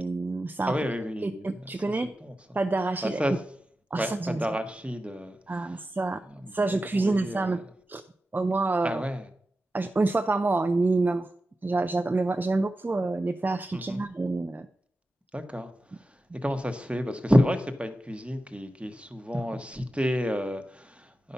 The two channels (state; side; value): normal; both; correlation 0.92